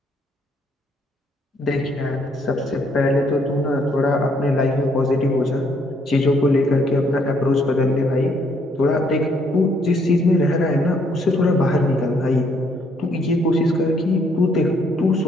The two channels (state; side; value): normal; both; correlation 0.69